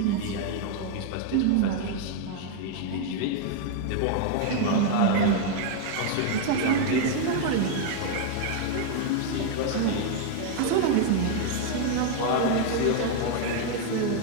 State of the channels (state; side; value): different; both; correlation 0.00